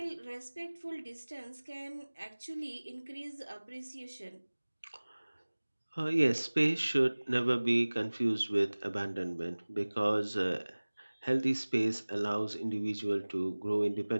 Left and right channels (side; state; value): both; inverted; correlation -1.00